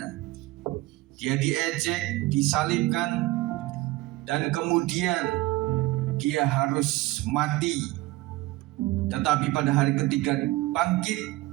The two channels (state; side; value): quieter; left; 19.0 dB